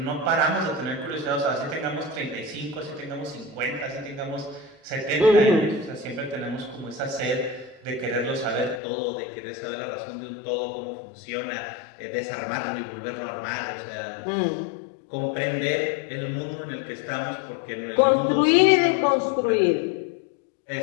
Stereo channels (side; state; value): right; drops out; at 8.8 s